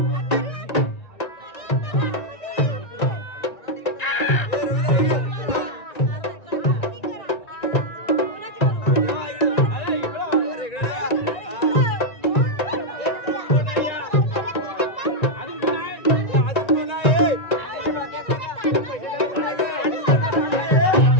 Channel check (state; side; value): late; right; 1.9 ms